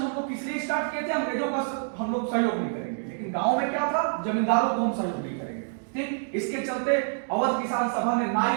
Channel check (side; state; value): left; silent; digital silence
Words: लोग इसलिए स्टार्ट किए थे, अंग्रेजों का हम लोग सहयोग नहीं करेंगे, लेकिन गांव में क्या था, जमींदारों को हम सहयोग नहीं करेंगे। ठीक, इसके चलते अवध किसान सभा ने